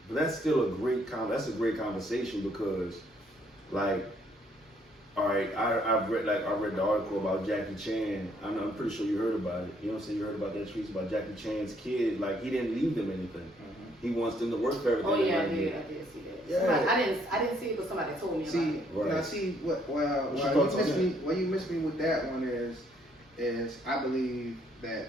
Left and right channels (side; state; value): both; normal; correlation 0.67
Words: That's still a great conversation, because like, all right, I read the article about Jackie Chan. I'm pretty sure you heard about it. You know what I'm saying? You heard about that tweet about Jackie Chan's kid. Like, he didn't leave them anything. He wants them to work for everything. Oh yeah, I did see that. Yeah. I didn't see it, but somebody told me about it. Now see why you missed me with that one is I believe that,